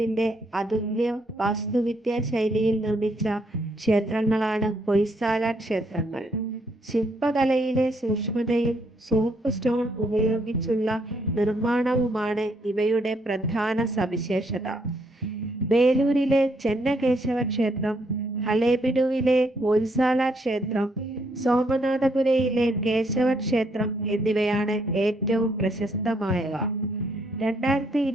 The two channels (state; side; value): normal; both; correlation 0.72